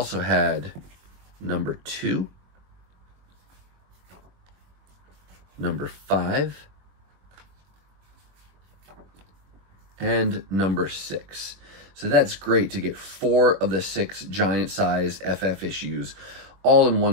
had #2, #5, and #6. So that's great to get 4 of the 6 giant size FF issues all in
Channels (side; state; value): left; late; 22 ms